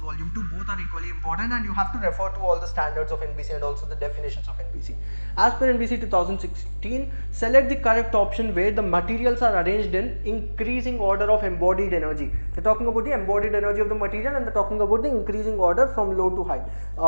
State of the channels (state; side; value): inverted; both; correlation -1.00